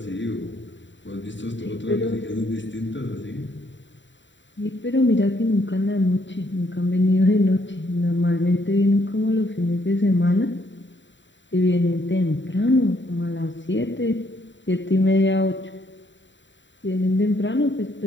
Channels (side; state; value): right; late; 0.54 ms